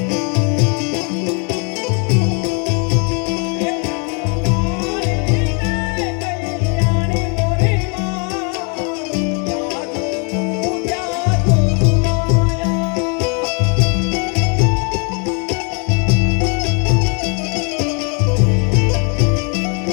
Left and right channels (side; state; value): right; quieter; 36.0 dB